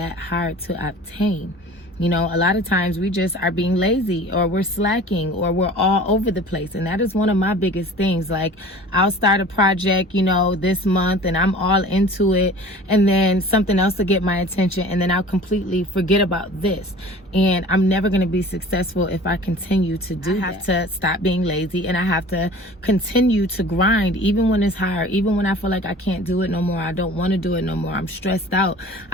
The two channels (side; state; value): both; normal; correlation 0.43